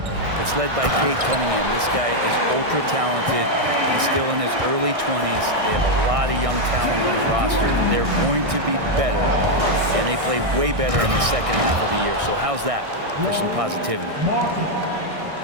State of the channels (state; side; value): late; left; 1.6 ms